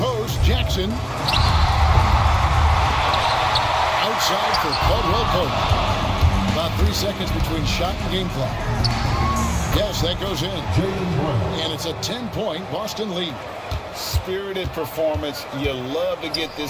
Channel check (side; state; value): both; identical; correlation 1.00